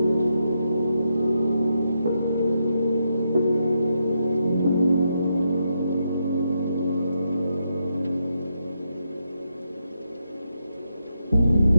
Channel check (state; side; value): inverted; both; correlation -0.82